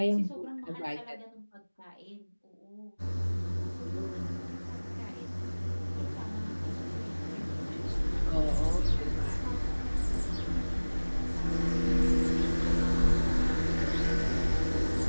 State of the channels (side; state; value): both; inverted; correlation -1.00